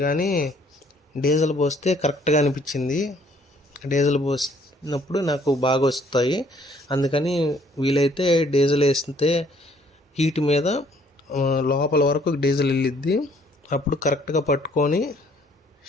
కానీ డీజిల్ పోస్తే కరెక్ట్గా అనిపించింది. డీజిల్ పోసినప్పుడు నాకు బాగా వస్తాయి, అందుకని వీలైతే డీజిల్ వేస్తే హీట్ మీద లోపల వరకు డీజిల్ వెళ్ళిద్ది, అప్పుడు కరెక్ట్గా పట్టుకొని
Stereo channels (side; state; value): both; normal; correlation 0.62